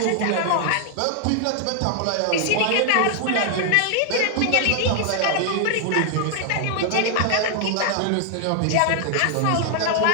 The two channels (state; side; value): different; both; correlation 0.00